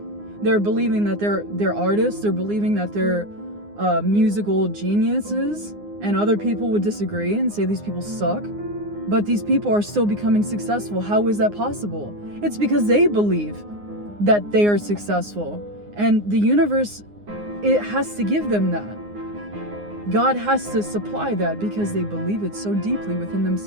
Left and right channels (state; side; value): late; left; 9.7 ms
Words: They're believing that they're artists. They're believing that they're musical geniuses. And other people would disagree and say these people suck. But these people are still becoming successful. How is that possible? It's because they believe that they are successful. And the universe, it has to give them that. God has to supply that because they believe it so deeply within